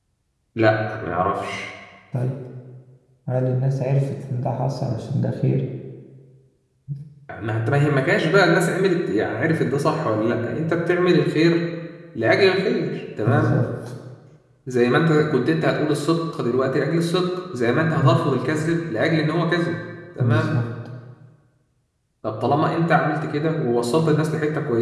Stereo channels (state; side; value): identical; both; correlation 1.00